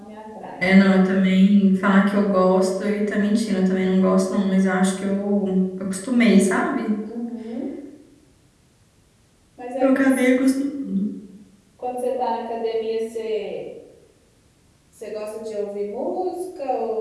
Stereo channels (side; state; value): both; identical; correlation 1.00